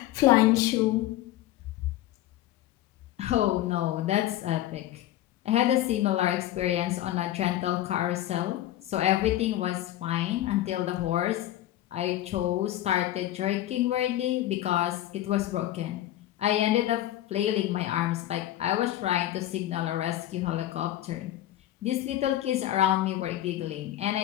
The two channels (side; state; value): right; quieter; 13.9 dB